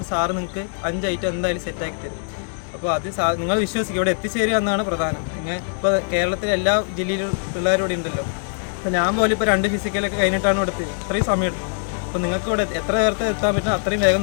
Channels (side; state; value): right; silent; digital silence